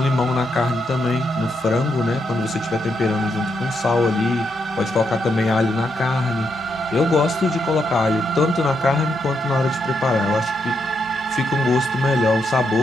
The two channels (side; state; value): both; normal; correlation 0.80